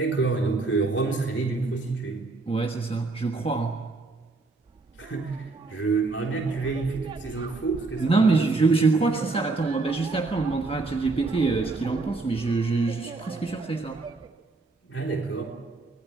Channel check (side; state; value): left; quieter; 3.6 dB